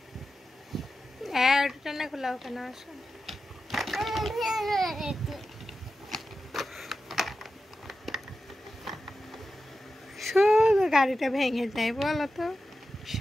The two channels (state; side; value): normal; both; correlation 0.92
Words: ওটা টানা খোলা ওখানে। আসো, শুধু গাড়িটা ভেঙে যায় বলো তো,